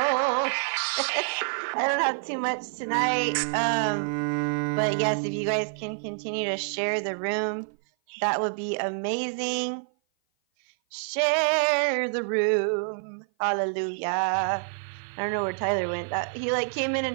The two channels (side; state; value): left; silent; 56 dB below the other